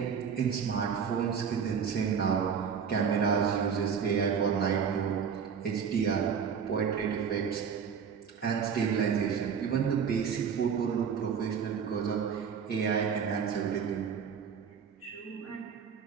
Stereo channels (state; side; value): quieter; left; 6.9 dB